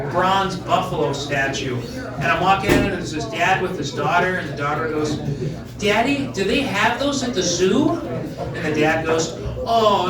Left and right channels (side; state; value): both; identical; correlation 1.00